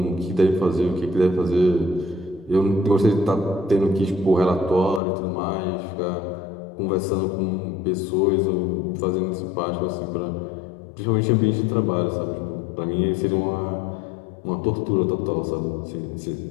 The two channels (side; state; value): right; drops out; at 5.0 s